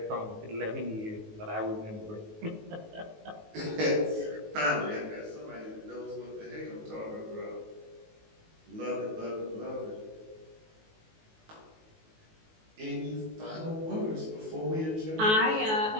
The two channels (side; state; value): left; late; 19 ms